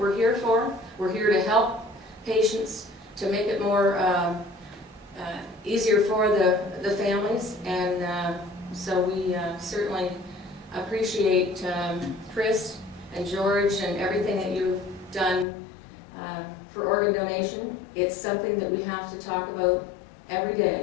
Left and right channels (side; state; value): right; drops out; at 15.5 s